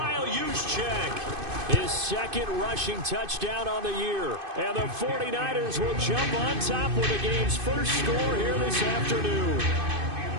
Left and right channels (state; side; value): late; left; 2.5 ms